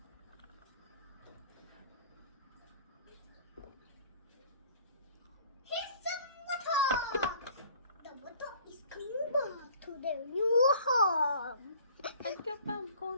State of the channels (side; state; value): both; inverted; correlation -0.51